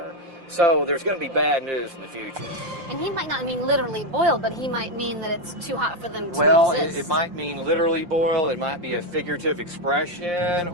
So there's going to be bad news in the future. And he might not mean literally boiled, but he might mean that it's too hot for them to Well, exist. it might mean literally boil, it might be a figurative expression,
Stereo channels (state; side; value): late; left; 5.7 ms